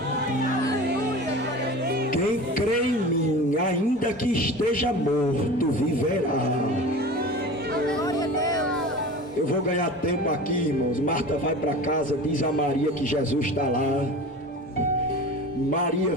Quem crê em mim, ainda que esteja morto, viverá. Eu vou ganhar tempo aqui, irmãos. Marta vai para casa, diz a Maria que Jesus está lá. Maria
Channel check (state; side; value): normal; both; correlation 0.35